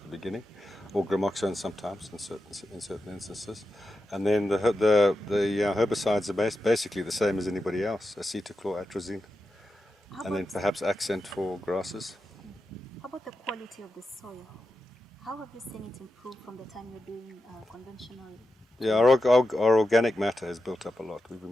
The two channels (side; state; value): both; normal; correlation 0.90